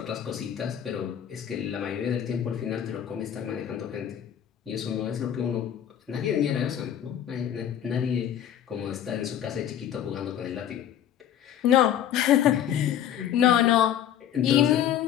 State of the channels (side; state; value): right; quieter; 10.1 dB